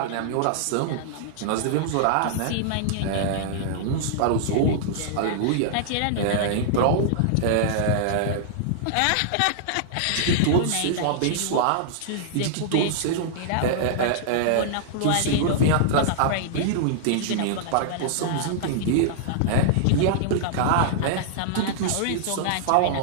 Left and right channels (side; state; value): both; different; correlation -0.01